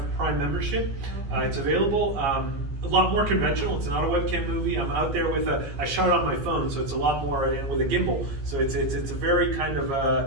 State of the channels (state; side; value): late; left; 15 ms